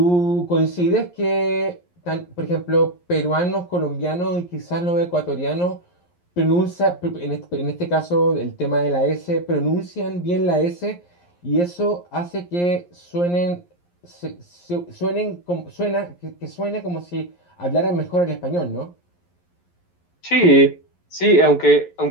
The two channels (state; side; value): late; right; 11 ms